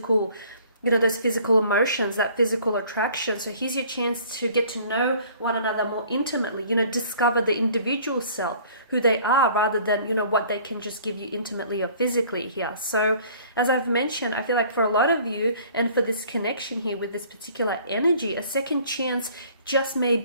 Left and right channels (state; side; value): inverted; both; correlation -0.53